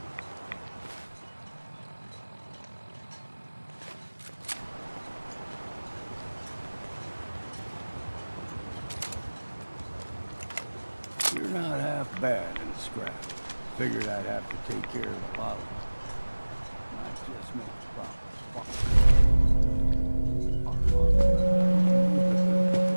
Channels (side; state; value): both; inverted; correlation -1.00